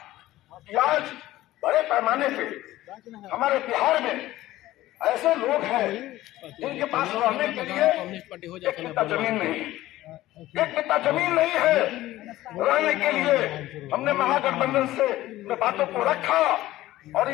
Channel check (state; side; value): quieter; right; 15.9 dB